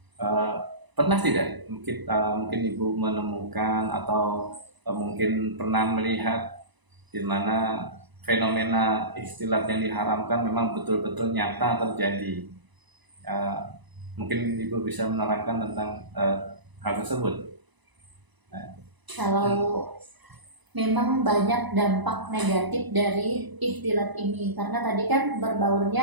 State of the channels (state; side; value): late; left; 1.0 ms